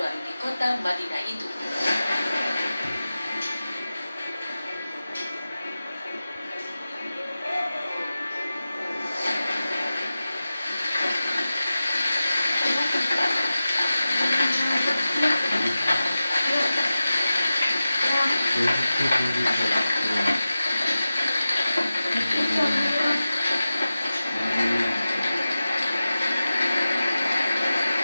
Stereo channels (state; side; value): inverted; both; correlation -0.94